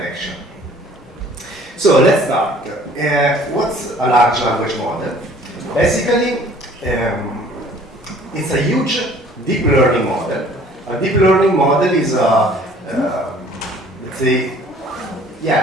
So let's start. What's a large language model? Basically, it's a huge deep learning model. A deep learning model is a, let's say,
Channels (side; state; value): both; normal; correlation 0.53